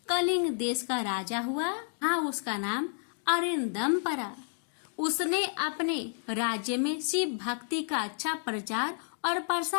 कलिंग देश का राजा हुआ। हाँ, उसका नाम अरिंदम पड़ा। उसने अपने राज्य में शिव भक्ति का अच्छा प्रचार और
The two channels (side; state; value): right; silent; digital silence